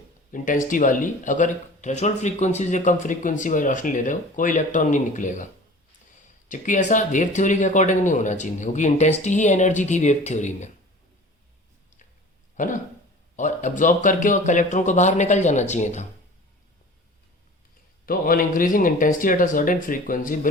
इंटेंसिटी वाली, अगर थ्रेशोल्ड फ्रीक्वेंसी से कम फ्रीक्वेंसी वाली रोशनी ले रहे हो, कोई इलेक्ट्रॉन नहीं निकलेगा। जबकि ऐसा वेव थ्योरी के अकॉर्डिंग नहीं होना चाहिए, क्योंकि इंटेंसिटी ही एनर्जी थी वेव थ्योरी में, है ना। और एब्जॉर्ब करके और इलेक्ट्रॉन को बाहर निकल जाना चाहिए था। तो on increasing intensity at a certain frequency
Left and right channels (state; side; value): normal; both; correlation 0.42